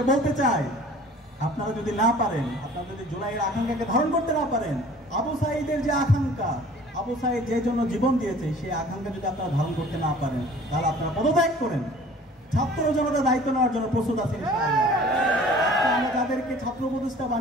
বলতে চাই, আপনারা যদি না পারেন, আপনারা যদি জুলাইয়ের আকাঙ্ক্ষাকে ধারণ করতে না পারেন, আবু সাঈদের যে আকাঙ্ক্ষা, আবু সাঈদ যে জন্য জীবন দিয়েছে, সেই আকাঙ্ক্ষা যদি আপনারা ধারণ করতে না পারেন, তাহলে আপনারা পদত্যাগ করেন। ছাত্র জনতা দায়িত্ব নেওয়ার জন্য প্রস্তুত আছেন ইনশাআল্লাহ। আমরা যাদেরকে ছাত্র উপদেষ্টা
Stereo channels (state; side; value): normal; both; correlation 0.48